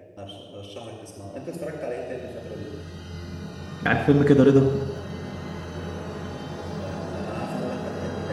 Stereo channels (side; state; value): both; identical; correlation 1.00